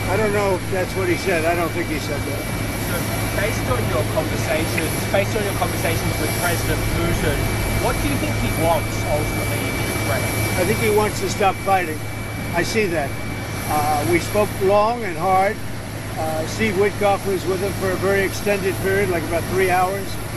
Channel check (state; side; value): identical; both; correlation 1.00